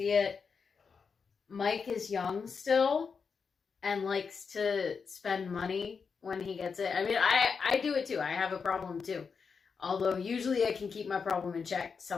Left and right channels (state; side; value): quieter; right; 5.6 dB